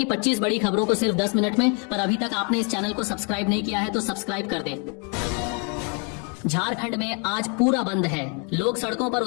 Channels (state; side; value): quieter; right; 36.7 dB